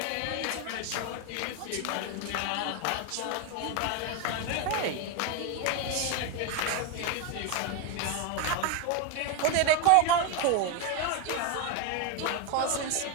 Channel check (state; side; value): different; both; correlation 0.02